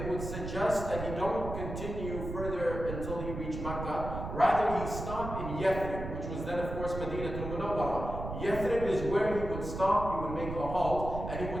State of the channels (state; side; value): noise; right; rumble, 7 dB below the sound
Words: would suggest that he don't continue further until he reached Makkah. Rather, he stopped in Yathrib, which was then, of course, Madinah al-Munawwarah. Yathrib is where he would stop, he would make a halt, and he